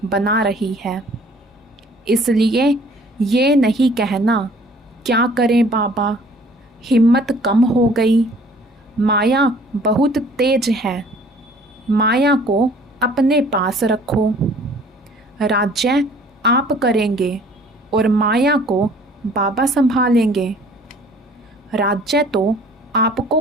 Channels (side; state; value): both; normal; correlation 0.54